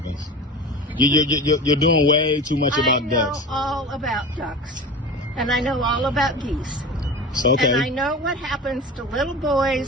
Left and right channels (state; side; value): normal; both; correlation 0.32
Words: You're doing way too much about ducks. I know all about ducks, and I know all about geese. Okay. And I know what happens to little